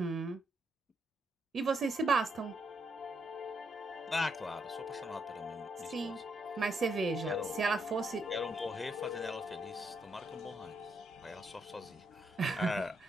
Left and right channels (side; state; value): both; normal; correlation 0.77